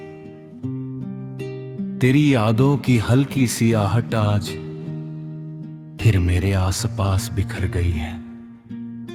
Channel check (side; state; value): both; identical; correlation 1.00